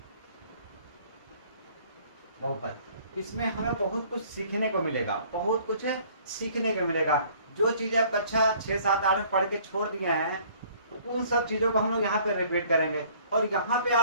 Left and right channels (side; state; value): both; inverted; correlation -0.56